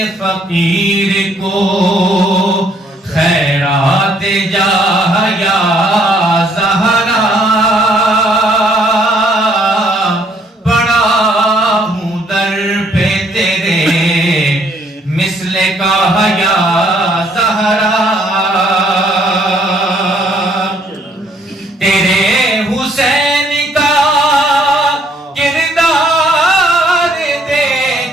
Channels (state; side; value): normal; both; correlation 0.66